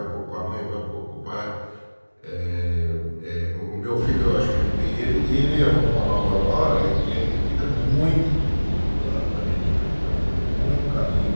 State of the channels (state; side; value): inverted; both; correlation -1.00